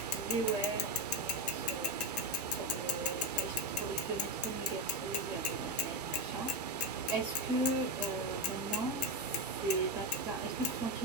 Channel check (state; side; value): normal; both; correlation 0.12